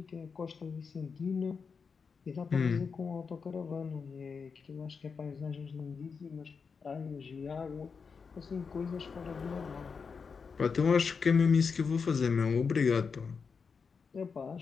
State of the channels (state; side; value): quieter; right; 5.5 dB